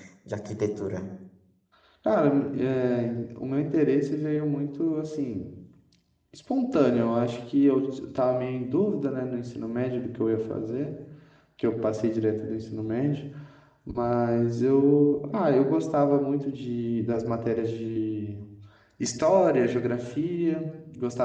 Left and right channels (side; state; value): both; identical; correlation 1.00